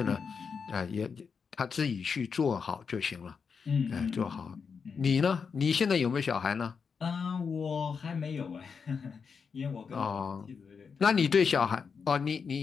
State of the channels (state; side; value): quieter; right; 5.8 dB